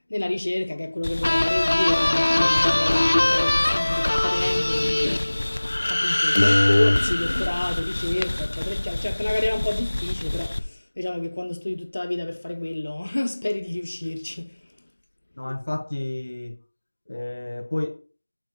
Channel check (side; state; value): both; inverted; correlation -1.00